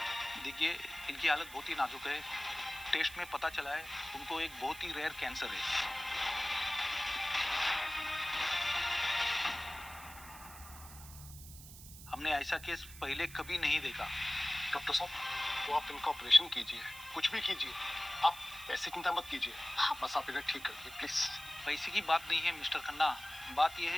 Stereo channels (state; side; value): noise; right; hiss, 16 dB below the sound